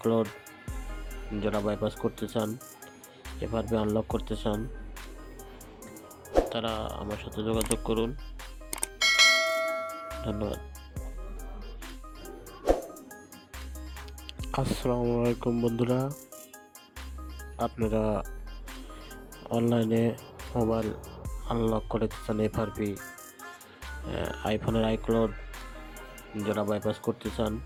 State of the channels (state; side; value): identical; both; correlation 1.00